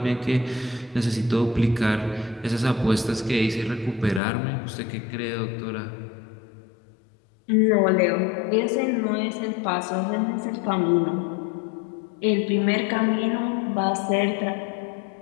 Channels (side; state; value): right; drops out; at 4.2 s